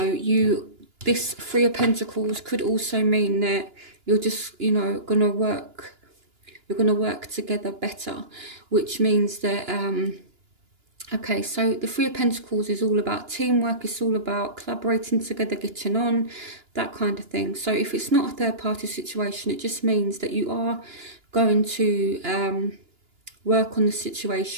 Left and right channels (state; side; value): late; left; 2.9 ms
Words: this 3 of Pentacles could also mean that you're just, you know, gonna work together better, which means that, okay, so the 3 of Pentacles is all about teamwork. It's all about collaborating together, getting on, that kind of thing. So if it's not a third party situation, it just means that you are going to work on the